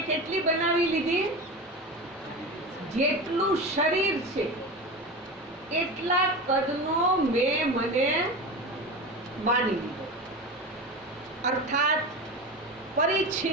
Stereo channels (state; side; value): normal; both; correlation 0.26